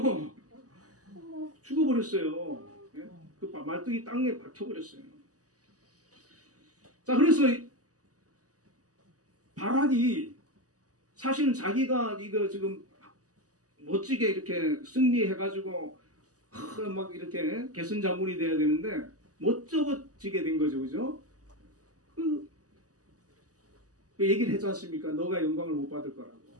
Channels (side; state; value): left; late; 0.67 ms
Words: 죽어버렸어요. 예? 그 말뚝이 땅에 박혀버렸어요. 자, 그래서 바락이 사실은 자기가 이거 지금 멋지게 이렇게 승리해가지고 막 이렇게 개선자문이 돼야 되는데 멋쩍어지게 된 거죠, 그죠? 그 얘기를 했지 않습니까? 너가 영광을 못 받을 거라고.